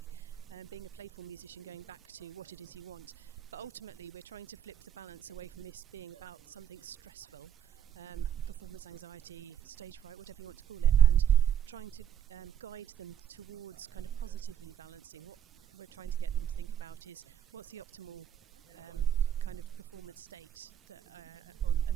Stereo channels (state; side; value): quieter; left; 9.8 dB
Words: being a playful musician, going back to what it is you want. But ultimately we're trying to flip the balance away from this being about something stressful, performance anxiety, stage fright, whatever you want to call it, and trying to guide them towards kind of positively balancing. What we're trying to get them to think about is what's the optimal kind of performance state that